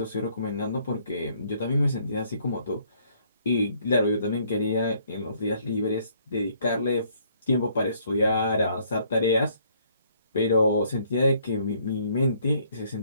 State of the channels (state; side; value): inverted; both; correlation -0.65